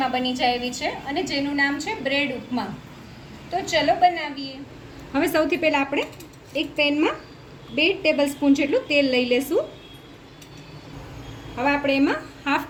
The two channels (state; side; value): identical; both; correlation 1.00